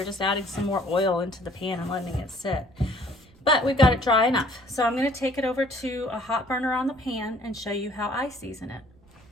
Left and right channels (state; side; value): noise; right; rumble, 27 dB below the sound